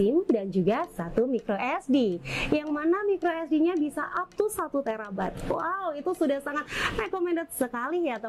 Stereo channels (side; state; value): both; identical; correlation 1.00